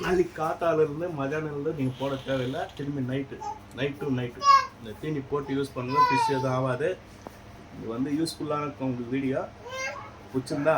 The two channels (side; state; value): both; identical; correlation 1.00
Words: நாளைக்கு காத்தாலேருந்து மதியானம்லேருந்து நீங்கள் போட தேவையில்லை. திரும்பி நைட்டு இந்த தீனி போட்டு யூஸ் பண்ணுங்கள். ஃபிஷ் எதுவும் ஆகாது. இது வந்து யூஸ்ஃபுல்லான இருக்கும். உங்களுக்கு வீடியோ பிடிச்சிருந்தா